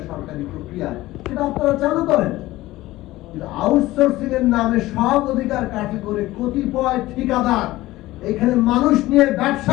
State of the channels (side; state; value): right; quieter; 17.4 dB